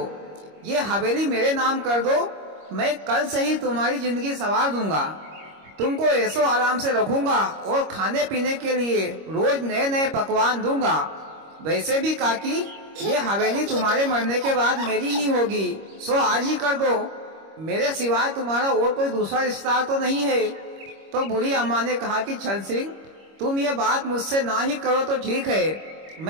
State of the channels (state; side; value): late; left; 25 ms